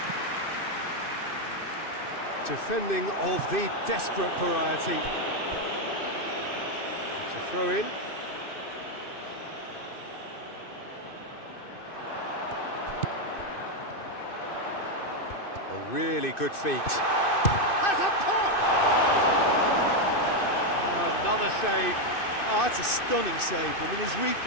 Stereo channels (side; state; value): right; late; 2.6 ms